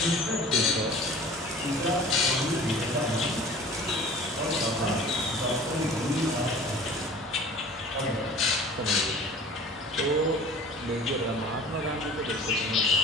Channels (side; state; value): both; normal; correlation 0.44